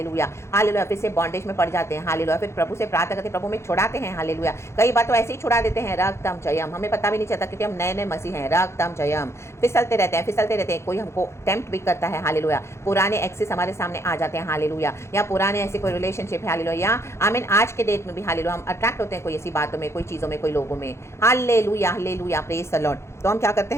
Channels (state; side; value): late; right; 0.13 ms